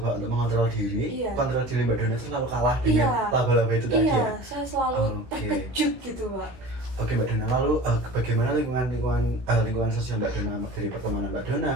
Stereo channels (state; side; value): late; left; 16 ms